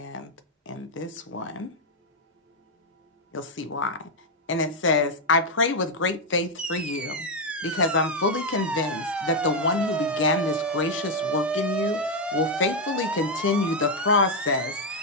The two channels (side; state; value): both; normal; correlation 0.02